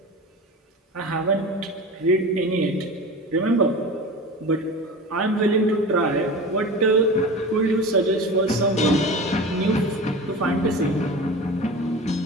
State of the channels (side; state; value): both; normal; correlation 0.32